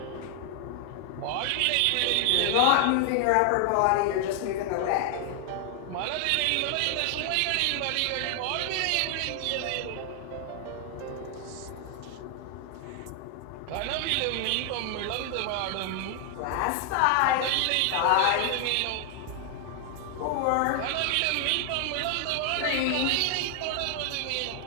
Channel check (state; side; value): different; both; correlation 0.00